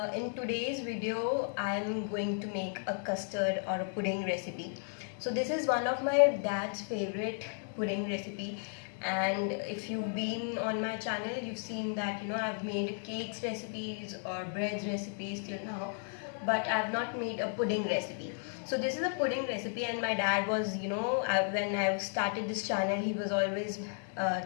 In today's video I'm going to make a custard or a pudding recipe. So this is one of my dad's favorite pudding recipe, and if you've been on my channel you've seen that I've made cakes recipes or breads recipes till now, but I've not made a pudding recipe. So this is a pudding recipe, and my dad was, when I started this channel, he was always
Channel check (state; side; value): silent; right; 55 dB below the other